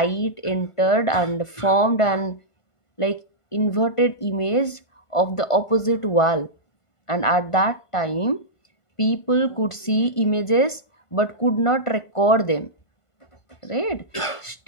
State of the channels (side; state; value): right; late; 1.5 ms